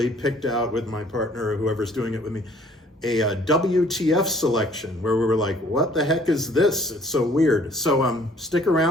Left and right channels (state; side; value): normal; both; correlation 0.58